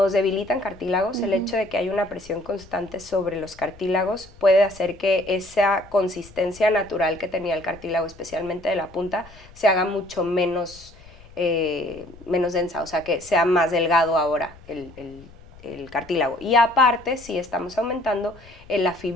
debilitan cartílagos, el hecho de que hay una presión constante sobre los cartílagos puede hacer que esa consistencia natural que tenía el cartílago, especialmente de la punta, se haga mucho menos, menos densa, o sea, que sea más delgado ahora el cartílago. Y aparte, sí estamos aumentando la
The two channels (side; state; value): left; noise; rumble, 22 dB below the sound